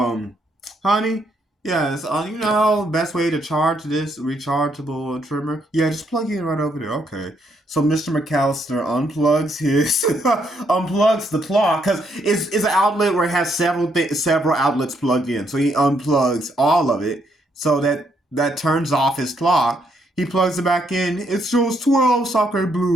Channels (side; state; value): both; normal; correlation 0.74